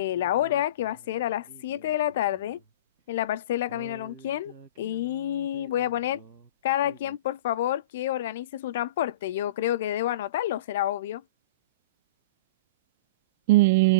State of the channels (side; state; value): both; inverted; correlation -0.31